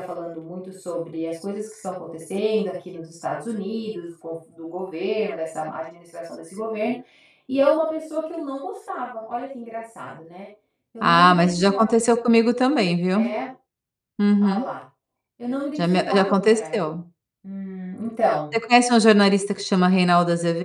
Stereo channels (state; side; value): identical; both; correlation 1.00